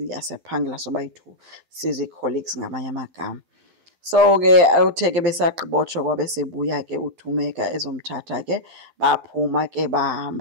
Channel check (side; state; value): left; late; 12 ms